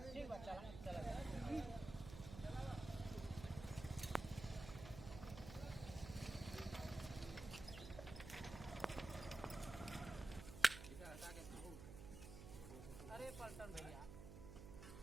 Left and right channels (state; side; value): noise; right; hum, 10 dB below the sound